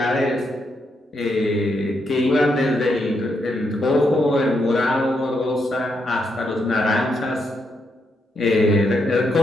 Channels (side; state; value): both; normal; correlation 0.80